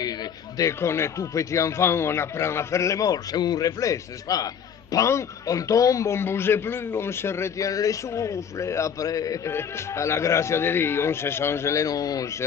dès qu'on est tout petit enfant, on apprend à faire les morts, c'est un réflexe, n'est-ce pas? Pan, on tombe, on ne bouge plus, on se retient les souffles, et après, à la grâce de Dieu, on se change les noms, on se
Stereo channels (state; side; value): quieter; right; 7.6 dB